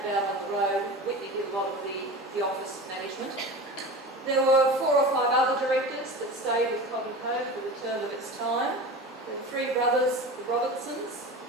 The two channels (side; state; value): both; normal; correlation 0.32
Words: about on the road. Whitney did a lot of the office management. There were 4 or 5 other directors that stayed with Cobb Co for the term of its time. The 3 brothers, the Robertsons,